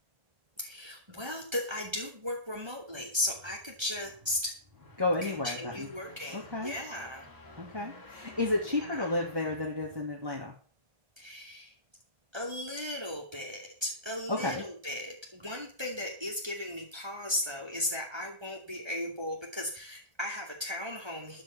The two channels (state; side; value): late; left; 1.3 ms